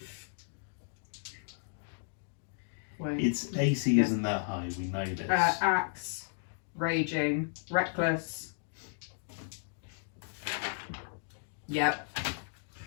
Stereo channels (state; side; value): silent; right; digital silence